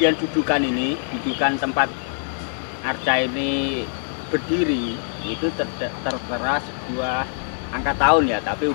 dudukan ini, dudukan tempat arca ini berdiri itu tertera sebuah angka tahun ya, tapi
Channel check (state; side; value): silent; right; digital silence